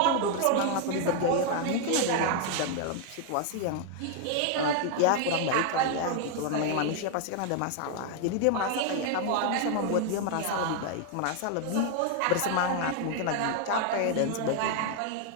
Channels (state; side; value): different; both; correlation 0.00